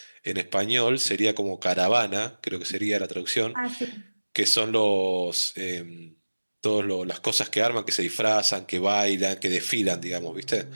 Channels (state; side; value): inverted; both; correlation -1.00